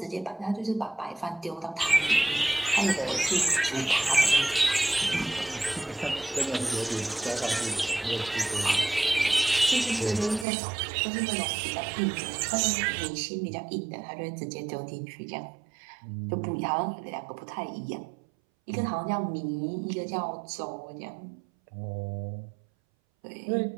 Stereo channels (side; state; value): left; drops out; at 10.5 s